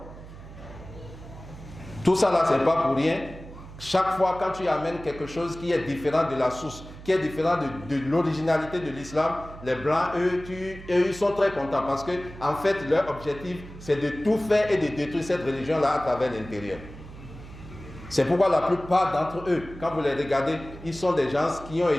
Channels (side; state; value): right; noise; hum, 15 dB below the sound